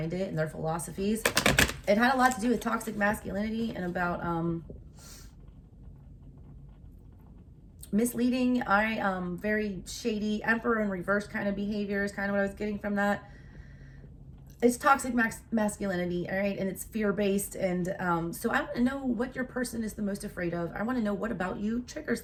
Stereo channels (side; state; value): both; identical; correlation 1.00